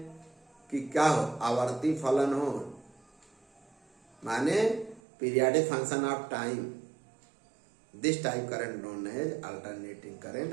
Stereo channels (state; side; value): drops out; left; at 5.0 s